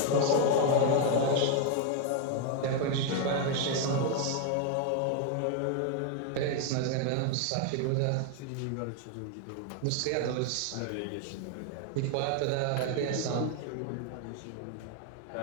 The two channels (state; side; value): different; both; correlation 0.00